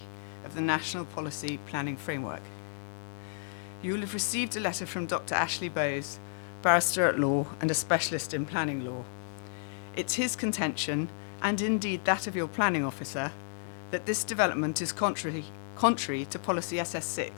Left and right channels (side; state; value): right; silent; digital silence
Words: of the National Policy Planning Framework. You will have received a letter from Dr. Ashley Bowes, barrister at law and a specialist in planning law. It's his contention, and indeed that of your planning officer, that this development is contrary to policy